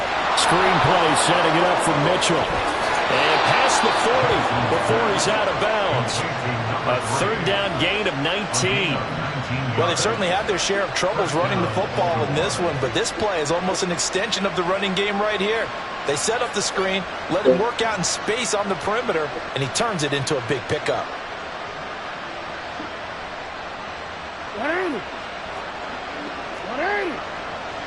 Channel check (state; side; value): identical; both; correlation 1.00